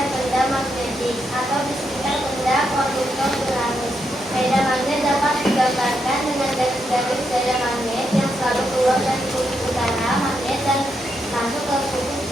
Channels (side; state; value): both; normal; correlation 0.81